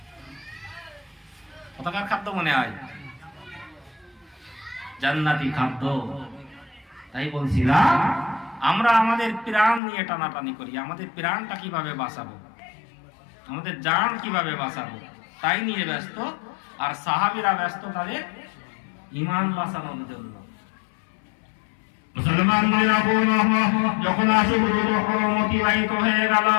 কোথাকার খাদ্য মনে হয়? জান্নাতি খাদ্য। তাই বলছিলাম আমরা আমাদের প্রাণ নিয়ে টানাটানি করি, আমাদের প্রাণটা কিভাবে বাঁচাবো, আমাদের জান কিভাবে বাঁচাবো, তাই নিয়ে ব্যস্ত। আর সাহাবীরা ব্যস্ত তাদের ঈমান বাঁচানোর জন্য। মুসলমানরা যখন আশুরুল হরম অতিবাহিত হয়ে গেল,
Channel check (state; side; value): drops out; right; at 9.8 s